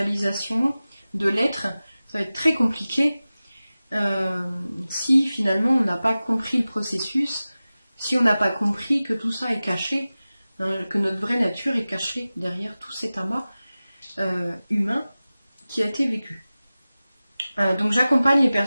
de l'être, ça va être très compliqué si finalement on n'a pas compris le processus, si on n'a pas compris que tout ça est caché, hein, que notre vraie nature est cachée derrière tout cet amas humain qui a été vécu. Donc j'accompagne les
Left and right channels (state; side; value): inverted; both; correlation -0.96